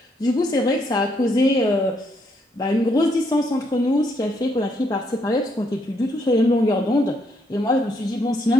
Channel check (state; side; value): normal; both; correlation 0.73